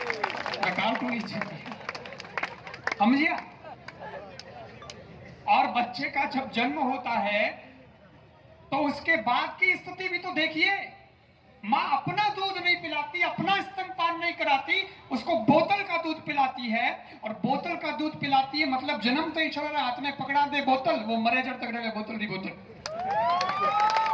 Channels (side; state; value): both; identical; correlation 1.00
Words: कार्टून ही समझिए। और बच्चे का जब जन्म होता है तो उसके बाद की स्थिति भी तो देखिए। मां अपना दूध नहीं पिलाती, अपना स्तनपान नहीं कराती, उसको बोतल का दूध पिलाती है। और बोतल का दूध पिलाती है मतलब जन्म तो ही छोड़ा हाथ में पकड़ा दे बोतल, वो मरे जब तक रहे बोतल दी बोतल,